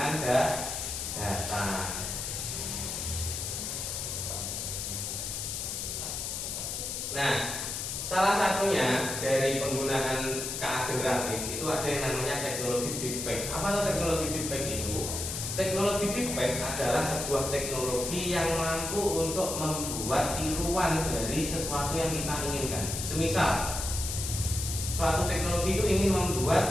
data. Nah, salah satunya dari penggunaan keagen kreatif itu ada yang namanya teknologi deepfake. Apa itu teknologi deepfake itu? Teknologi deepfake adalah sebuah teknologi yang mampu untuk membuat tiruan dari sesuatu yang kita inginkan. Semisal suatu teknologi itu ingin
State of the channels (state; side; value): noise; left; hiss, 4 dB below the sound